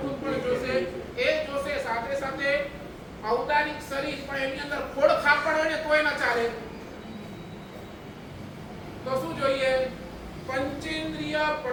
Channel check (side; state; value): both; identical; correlation 1.00